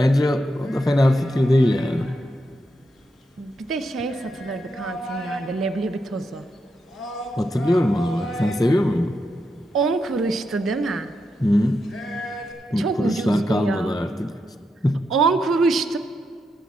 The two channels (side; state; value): both; normal; correlation 0.84